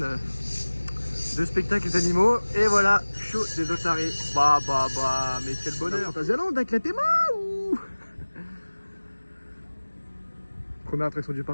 spectacles d'animaux, et voilà, show des otaries. Bah, mais quel bonheur. Fantasyland avec la théma ou. Première attraction du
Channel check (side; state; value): both; inverted; correlation -1.00